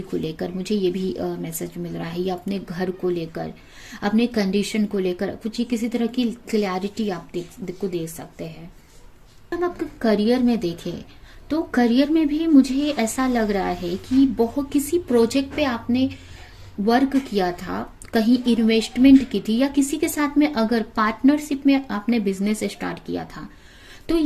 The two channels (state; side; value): identical; both; correlation 1.00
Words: को लेकर, मुझे ये भी मैसेज मिल रहा है, या अपने घर को लेकर, अपने कंडीशन को लेकर कुछ ही किसी तरह की क्लैरिटी आप को दे सकते हैं। हम आपके करियर में देखें, तो करियर में भी मुझे ऐसा लग रहा है कि बहुत किसी प्रोजेक्ट पे आपने वर्क किया था, कहीं इन्वेस्टमेंट की थी, या किसी के साथ में अगर पार्टनरशिप में आपने बिजनेस स्टार्ट किया था, तो